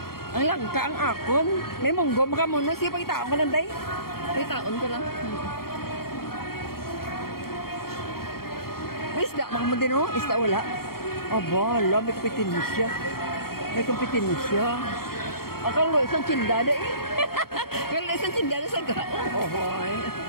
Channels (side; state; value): right; late; 0.94 ms